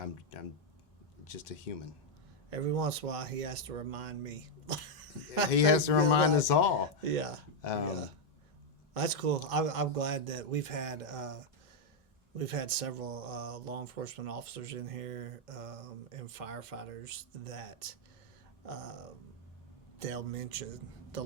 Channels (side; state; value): both; normal; correlation 0.00